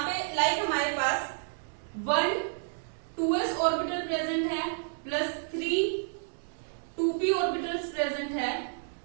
पे लाइक हमारे पास 1 2s ऑर्बिटल प्रेजेंट है प्लस 3 2p ऑर्बिटल्स प्रेजेंट है।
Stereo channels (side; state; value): left; silent; digital silence